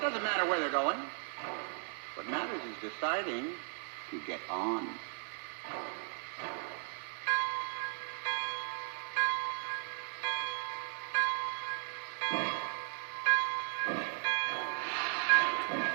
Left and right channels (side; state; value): left; silent; 53 dB below the other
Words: doesn't matter where they're going. What matters is deciding to get on.